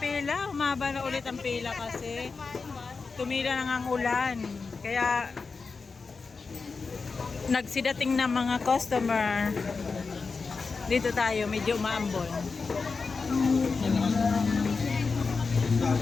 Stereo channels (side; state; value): right; quieter; 4.6 dB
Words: Umaba na ulit ang pila kasi tumila na ang ulan. Kaya, nagsidating na mga customer. Dito tayo, medyo umaambon.